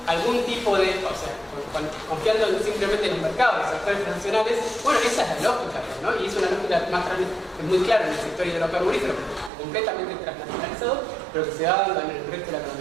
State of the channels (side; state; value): left; drops out; at 9.5 s